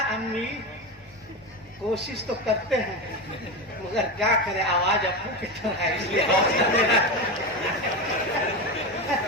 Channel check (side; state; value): both; normal; correlation 0.18